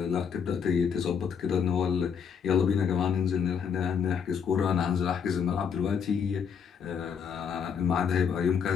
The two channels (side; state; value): right; quieter; 7.0 dB